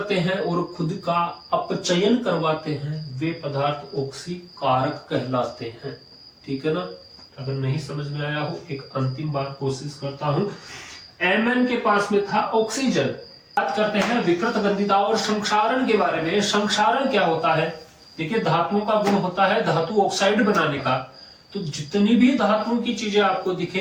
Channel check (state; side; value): identical; both; correlation 1.00